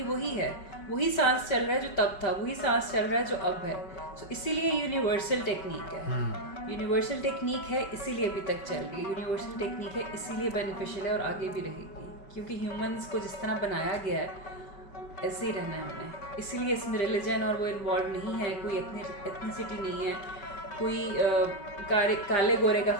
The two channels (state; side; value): late; right; 5.3 ms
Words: वही है. वही सांस चल रहा है जो तब था, वही सांस चल रहा है जो अब है. तो इसीलिए यूनिवर्सल टेक्निक है. यूनिवर्सल टेक्निक है इसीलिए अभी तक चल रही है. यूनिवर्सल टेक्निक है इसीलिए बेनिफिशियल है और आगे भी रहेगी, क्योंकि ह्यूमंस को जिस तरह बनाया गया है ऐसे ही रहना है हमने. इसीलिए इसमें रिलीजन और वो इन्वॉल्व नहीं है, कोई एथनिसिटी नहीं है, कोई काले गोरे का